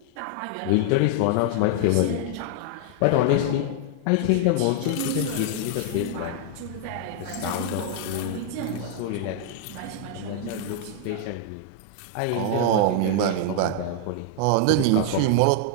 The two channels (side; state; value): both; different; correlation 0.00